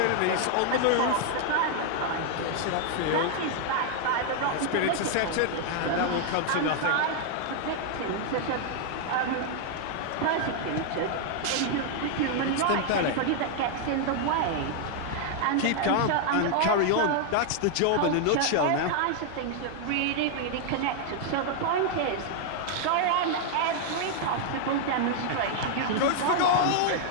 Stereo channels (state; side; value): different; both; correlation 0.00